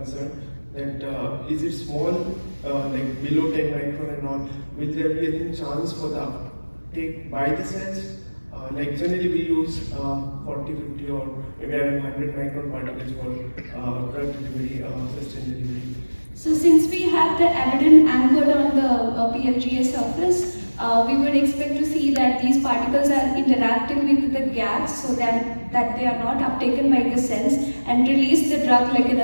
that is it small, like below 10 micron and all, will there be any chance for the uptake by the cells? Like generally we use 40, 50 or maybe around 100 micron particles for drug delivery, sustained delivery. So since we have the abaddon anchored on the PLGA surface, we would expect to see that these particles are interacting with the gas so that they are not uptaken by the cells and release the drug like in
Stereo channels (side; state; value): both; inverted; correlation -1.00